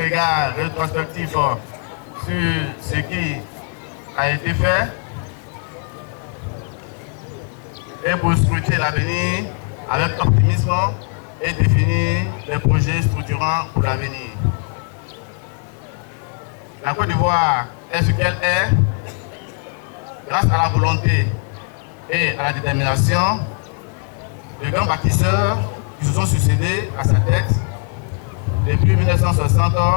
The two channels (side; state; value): right; quieter; 38.9 dB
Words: rétrospectif sur ce qui a été fait et pour scruter l'avenir avec optimisme et définir les projets structurants pour l'avenir. La Côte d'Ivoire est ce qu'elle est grâce à la volonté et à la détermination de grands bâtisseurs qui se sont succédés à sa tête depuis 1960